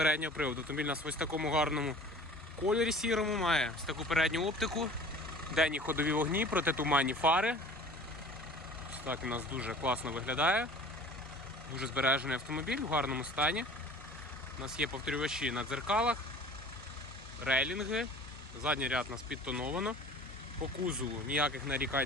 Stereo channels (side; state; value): both; normal; correlation 0.45